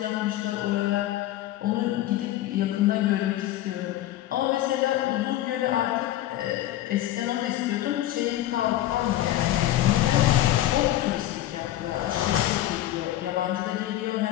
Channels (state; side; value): quieter; right; 14.1 dB